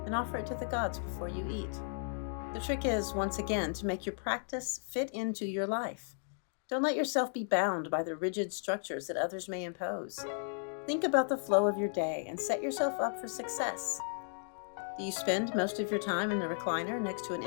and offer it to the gods before you eat. The trick is, once again, to make your practice fit into your life. Don't let yourself be bound by the rigid structures that others may impose. Think about the flow of your day and set yourself up for success. Do you spend most of your time in the recliner next to an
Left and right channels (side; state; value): right; silent; digital silence